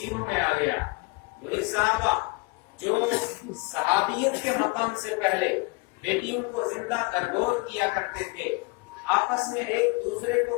میں آ گیا۔ وہی صحابہ جو صحابیت کے مقام سے پہلے بیٹیوں کو زندہ درگور کیا کرتے تھے، آپس میں ایک دوسرے کو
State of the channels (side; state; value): right; quieter; 27.7 dB